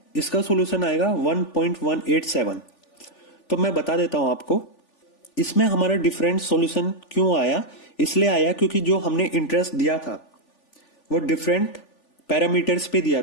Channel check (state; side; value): late; right; 3.4 ms